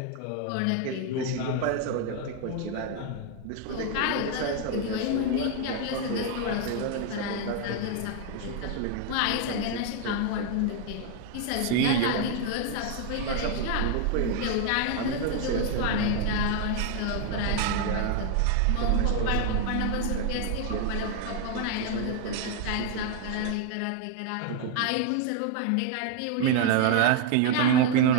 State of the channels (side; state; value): both; different; correlation 0.00